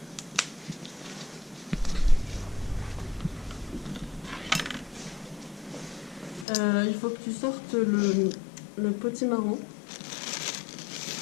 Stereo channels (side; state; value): right; drops out; at 6.5 s